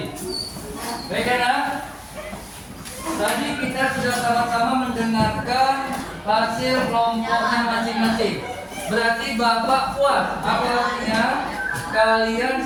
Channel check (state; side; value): identical; both; correlation 1.00